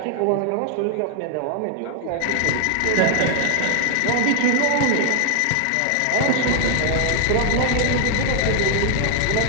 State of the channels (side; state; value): both; different; correlation 0.00